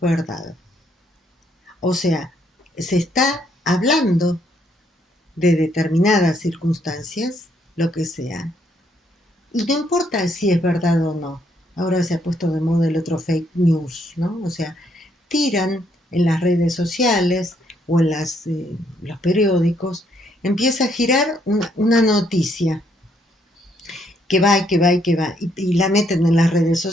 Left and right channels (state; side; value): normal; both; correlation 0.71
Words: O sea, se está hablando de determinadas circunstancias, lo que sea, y no importa si es verdad o no. Ahora se ha puesto de moda el otro fake news, ¿no? O sea, tiran en las redes sociales o en los periódicos, empieza a girar una noticia que va y que va y que va, y la meten en las redes